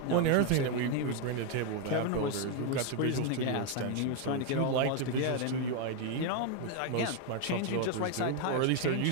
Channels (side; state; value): both; different; correlation 0.01